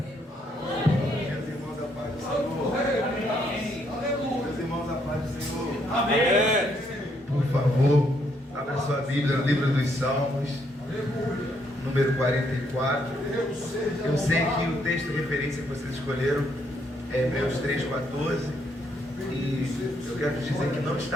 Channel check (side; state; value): both; normal; correlation 0.73